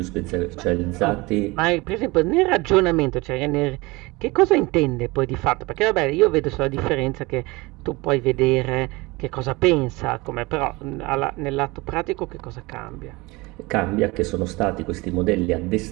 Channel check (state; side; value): quieter; left; 23.3 dB